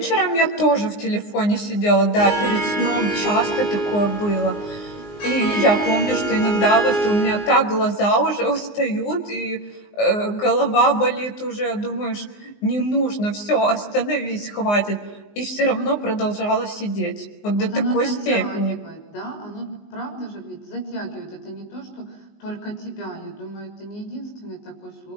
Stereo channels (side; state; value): right; late; 19 ms